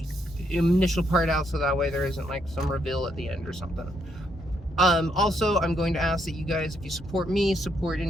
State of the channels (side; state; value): both; normal; correlation 0.75